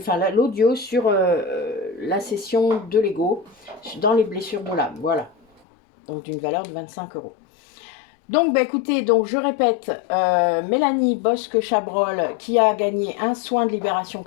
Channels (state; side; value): drops out; right; at 5.6 s